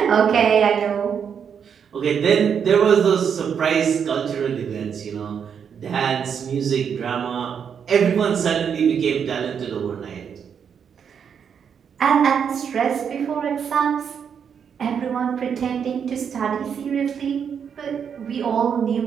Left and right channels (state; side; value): quieter; left; 7.4 dB